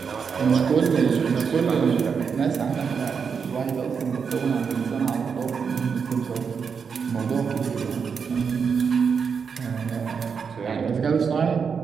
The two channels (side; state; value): left; quieter; 6.1 dB